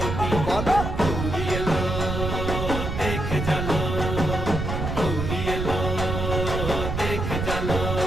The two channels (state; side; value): noise; right; rumble, 3 dB below the sound